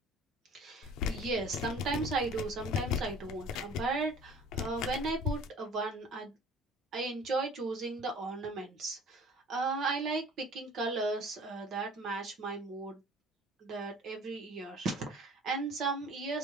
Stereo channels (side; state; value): both; normal; correlation 0.47